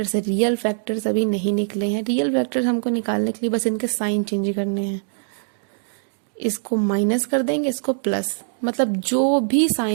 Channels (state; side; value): silent; left; digital silence